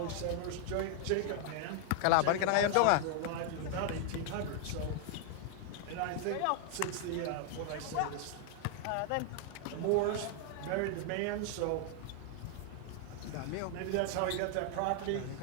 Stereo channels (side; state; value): both; different; correlation 0.00